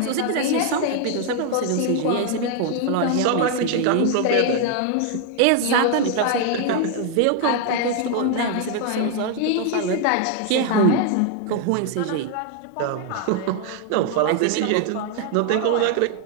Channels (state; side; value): different; both; correlation 0.00